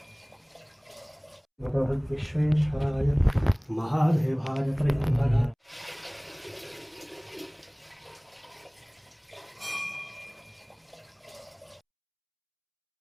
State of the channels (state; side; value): identical; both; correlation 1.00